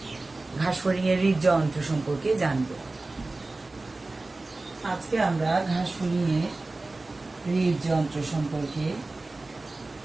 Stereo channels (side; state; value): left; quieter; 3.2 dB